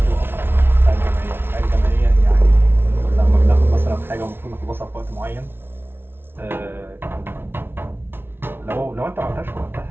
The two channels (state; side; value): late; left; 0.11 ms